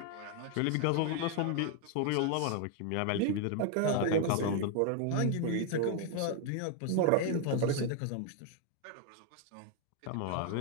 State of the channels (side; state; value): both; different; correlation 0.01